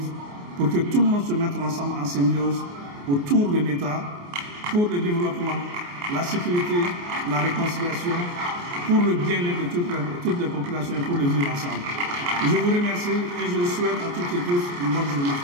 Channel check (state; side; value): late; left; 28 ms